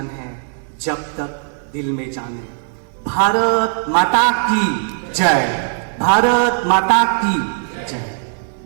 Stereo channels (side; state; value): left; silent; digital silence